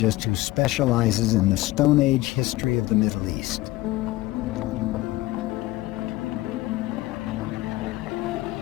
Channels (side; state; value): right; quieter; 18.2 dB